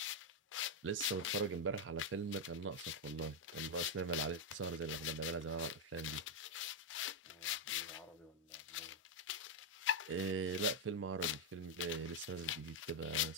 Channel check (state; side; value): normal; both; correlation 0.01